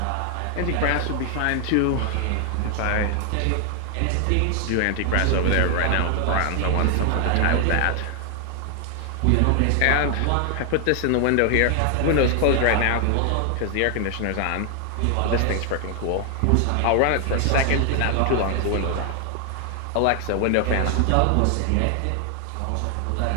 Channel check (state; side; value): different; both; correlation 0.00